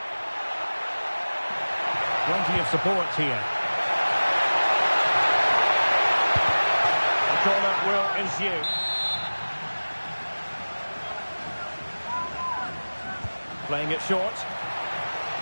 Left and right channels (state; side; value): inverted; both; correlation -1.00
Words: Plenty of support here. The corner will ensue. Playing it short.